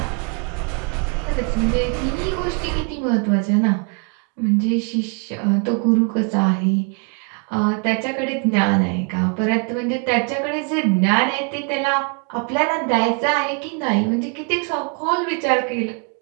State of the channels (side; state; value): left; quieter; 37.4 dB